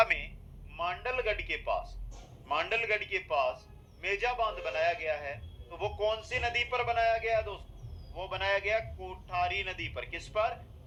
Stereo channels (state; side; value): identical; both; correlation 1.00